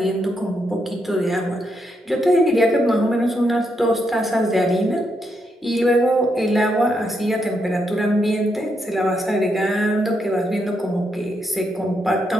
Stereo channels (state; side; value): normal; both; correlation 0.80